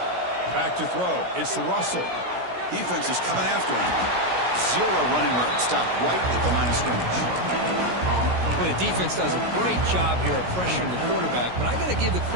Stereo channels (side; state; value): left; late; 16 ms